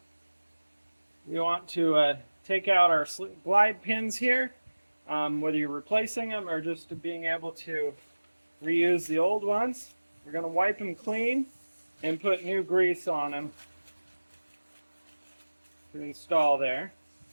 we want to take out our glide pins here, whether you're replacing them or just being able to reuse the old ones. We're going to wipe them clean and put new grease on them to install there.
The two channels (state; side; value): inverted; both; correlation -1.00